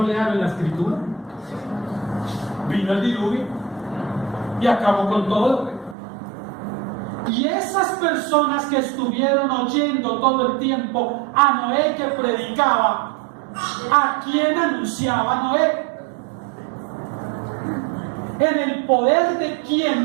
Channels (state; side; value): drops out; left; at 6.0 s